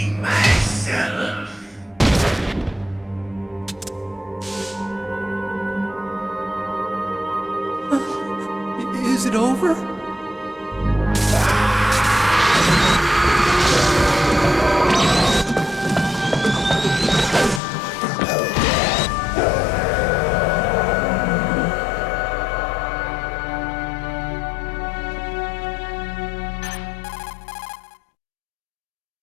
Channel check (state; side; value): drops out; right; at 17.6 s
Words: myself. Is it over?